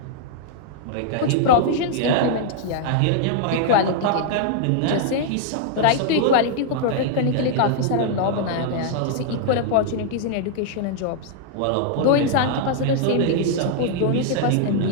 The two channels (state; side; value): different; both; correlation -0.01